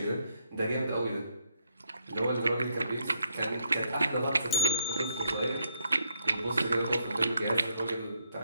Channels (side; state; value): both; inverted; correlation -0.73